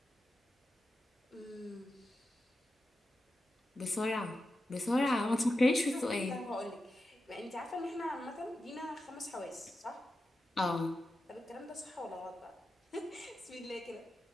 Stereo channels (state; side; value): normal; both; correlation 0.91